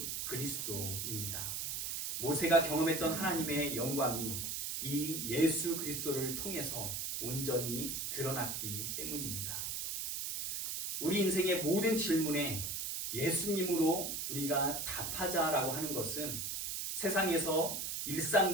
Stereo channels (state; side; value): noise; right; hiss, 3 dB below the sound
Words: 그리스도입니다. 모세가 경험했던 하나님의 영광이 이 예수 그리스도를 통해서 온전히 드러났기 때문입니다. 우리 인생의 모든 질문에 예수님으로 우리가 답하자라고 하는 것은 세상에서